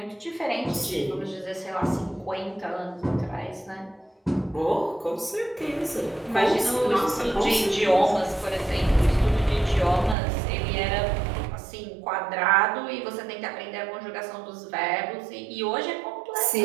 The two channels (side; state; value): left; drops out; at 10.2 s